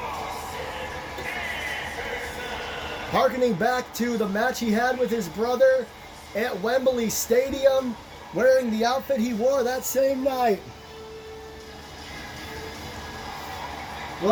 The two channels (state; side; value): identical; both; correlation 1.00